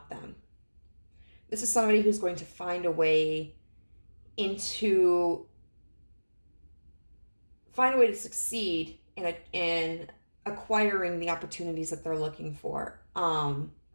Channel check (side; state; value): both; inverted; correlation -1.00